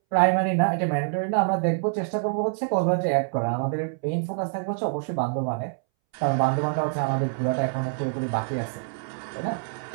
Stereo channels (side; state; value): left; silent; 61 dB below the other